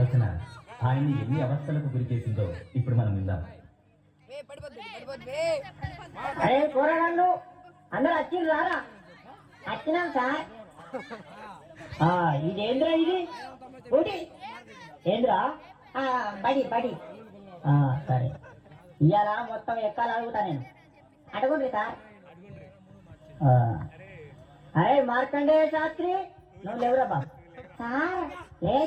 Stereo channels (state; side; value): identical; both; correlation 1.00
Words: ఆయన్ని ఎన్ని అవస్థలకు గురి చేసిందో ఇప్పుడు మనం విందాం. అందరూ వచ్చింది రారా? వచ్చినాం సార్. ఇదేంద్రా ఇది ఊటి ఏంద్రా? బడి బడి సరే, ఇవాళ మొత్తం ఎక్కాలి అడుగుతా నేను. అడగండి సార్. అరే మార్కండేయ శాస్త్రి, నువ్వు లేవురా బాబు. సార్